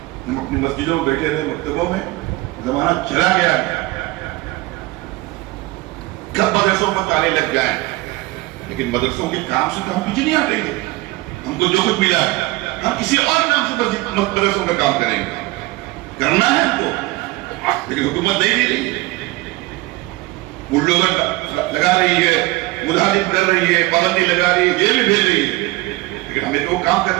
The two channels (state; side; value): quieter; left; 20.4 dB